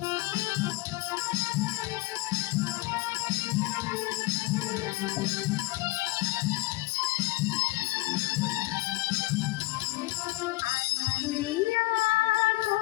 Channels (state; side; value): quieter; right; 21.3 dB